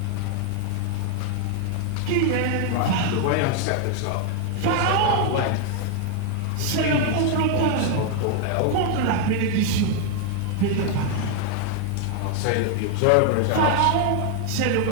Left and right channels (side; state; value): both; different; correlation 0.00